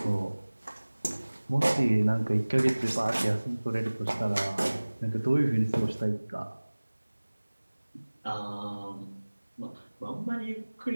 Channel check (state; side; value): inverted; both; correlation -1.00